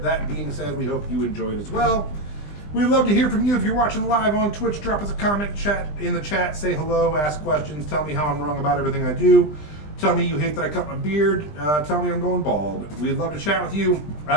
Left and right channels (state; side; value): late; right; 20 ms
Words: That being said, we hope you enjoy it as well. We'd love to hear from you. If you're watching live on Twitch, drop us a comment in the chat, say hello, ask questions, tell me how I'm wrong about everything I do. Tell me you hate that I cut my beard. Tell me I'm going bald. We'd love to chat with you.